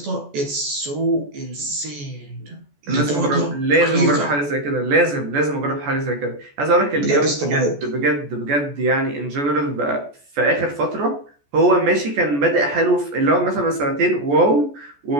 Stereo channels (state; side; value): late; left; 14 ms